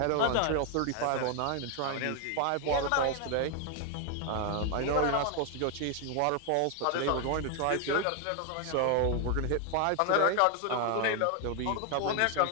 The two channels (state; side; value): different; both; correlation 0.00